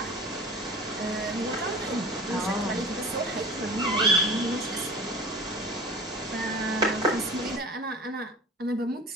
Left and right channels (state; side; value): normal; both; correlation 0.38